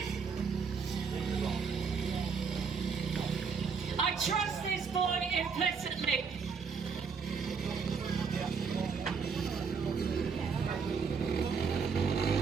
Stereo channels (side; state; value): left; quieter; 5.7 dB